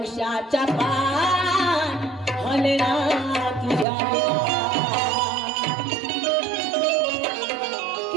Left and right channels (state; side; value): drops out; left; at 3.9 s